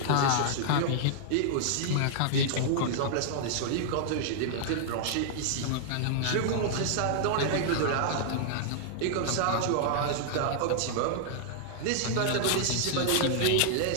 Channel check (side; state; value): both; different; correlation -0.01